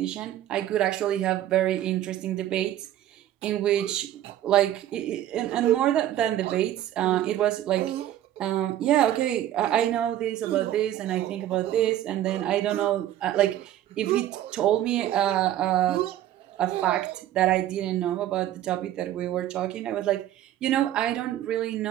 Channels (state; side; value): quieter; left; 12.4 dB